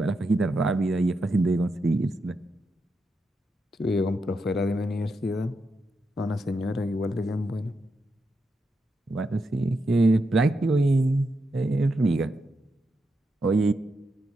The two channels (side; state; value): both; normal; correlation 0.84